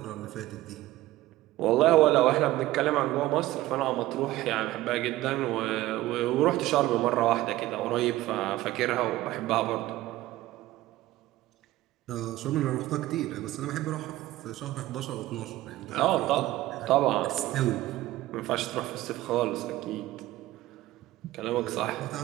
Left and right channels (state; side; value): quieter; left; 16.3 dB